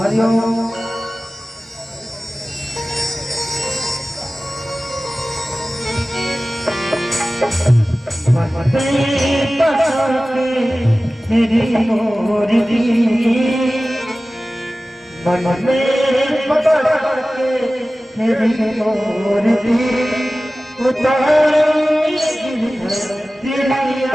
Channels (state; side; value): normal; both; correlation 0.96